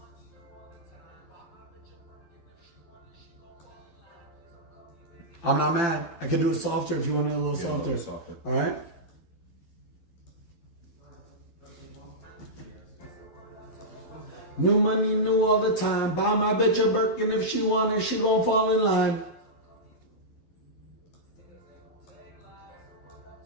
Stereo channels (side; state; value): right; late; 12 ms